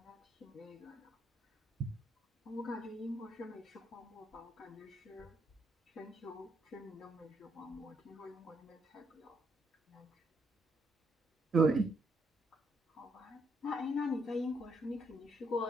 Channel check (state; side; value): normal; both; correlation 0.74